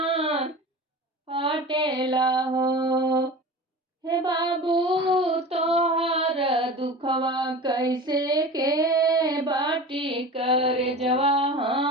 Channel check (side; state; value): both; normal; correlation 0.34